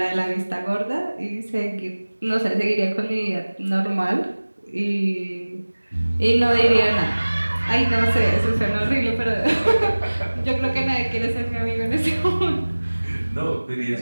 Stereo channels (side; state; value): both; inverted; correlation -1.00